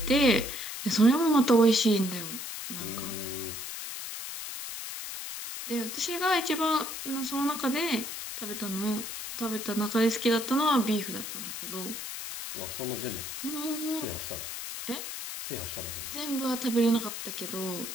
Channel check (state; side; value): noise; left; hiss, 7 dB below the sound